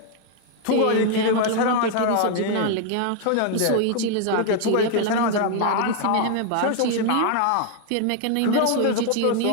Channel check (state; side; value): different; both; correlation 0.00